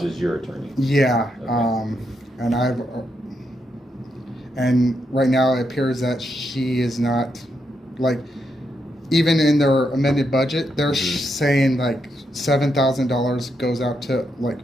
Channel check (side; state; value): both; normal; correlation 0.81